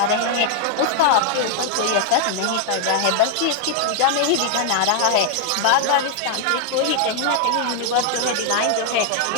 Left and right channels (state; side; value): different; both; correlation 0.00